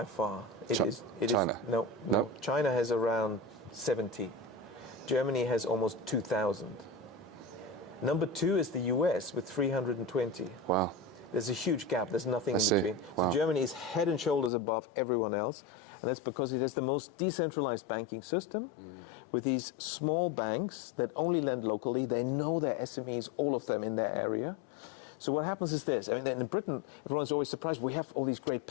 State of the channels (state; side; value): drops out; right; at 14.5 s